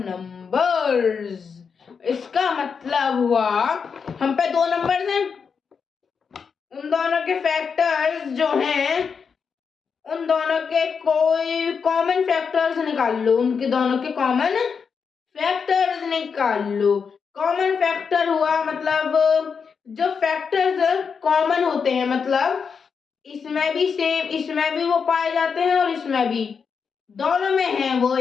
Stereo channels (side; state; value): right; quieter; 6.0 dB